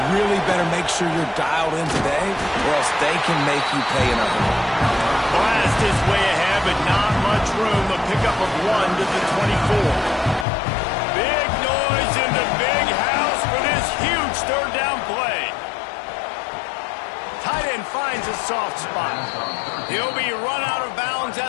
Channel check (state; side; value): drops out; right; at 10.5 s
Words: really better make sure you're dialed in today, or else they can make you pay another one. Blast is way ahead, but not much room. A pickup of 1 to the 24. Big noise in the big house for this huge third down play. Tight end finds a soft spot. He'll be run out of bounds